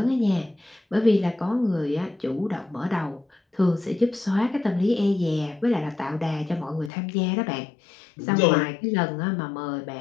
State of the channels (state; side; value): drops out; right; at 6.9 s